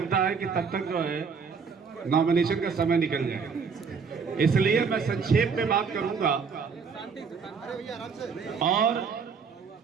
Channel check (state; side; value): quieter; left; 5.7 dB